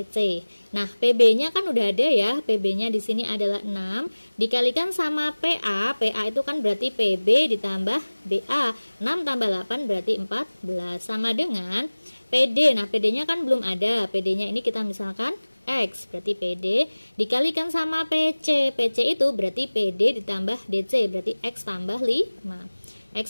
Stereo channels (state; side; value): inverted; both; correlation -1.00